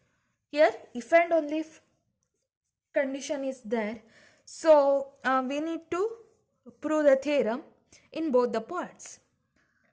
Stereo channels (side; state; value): both; identical; correlation 1.00